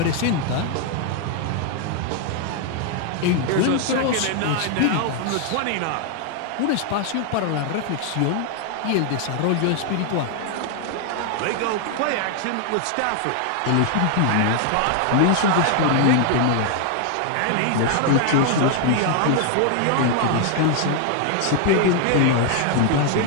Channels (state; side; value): different; both; correlation 0.00